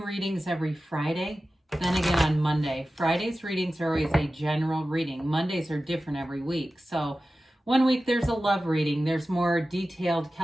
readings every Friday, then again on Monday. Friday's readings are always a general reading. Mondays are different every week. So one week there's a love reading, there's more detailed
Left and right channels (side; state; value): both; normal; correlation 0.95